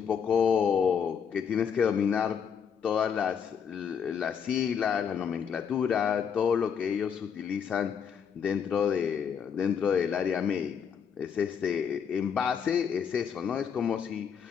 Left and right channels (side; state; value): right; quieter; 7.3 dB